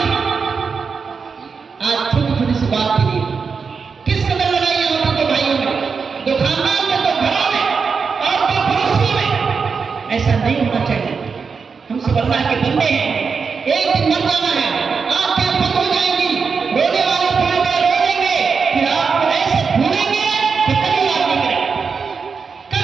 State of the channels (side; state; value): left; quieter; 5.4 dB